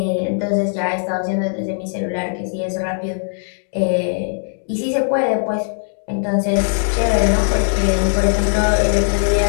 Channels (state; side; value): silent; right; digital silence